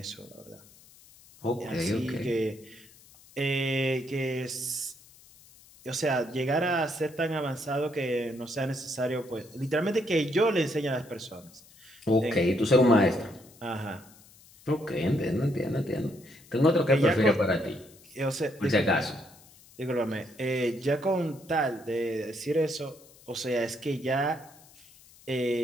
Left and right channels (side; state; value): left; noise; hiss, 25 dB below the sound